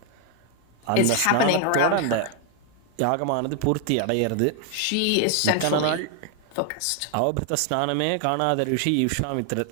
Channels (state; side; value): different; both; correlation 0.00